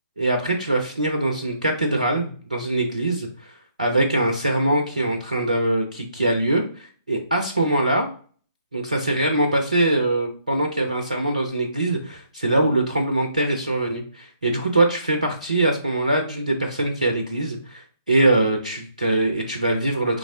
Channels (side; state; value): both; inverted; correlation -0.72